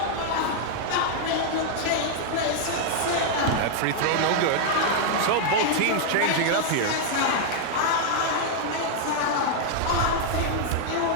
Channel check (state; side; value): different; both; correlation 0.00